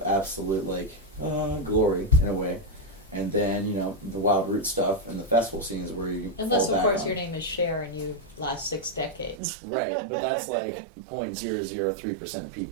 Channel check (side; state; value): left; drops out; at 9.4 s